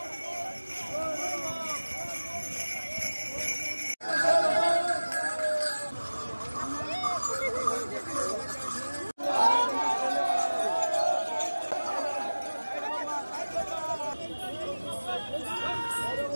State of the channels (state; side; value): inverted; both; correlation -1.00